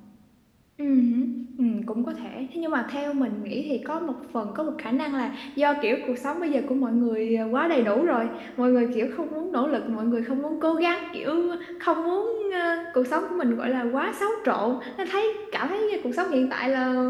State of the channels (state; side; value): identical; both; correlation 1.00